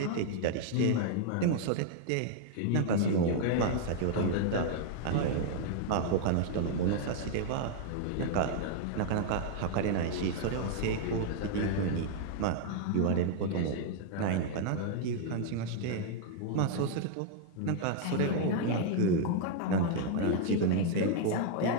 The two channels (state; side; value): different; both; correlation 0.00